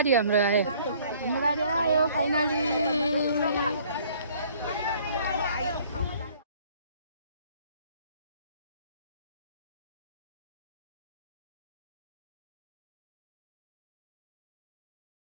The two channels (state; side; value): inverted; both; correlation -0.57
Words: हाम्रो आयो। हाम्रो गाडी आयो फाइनली।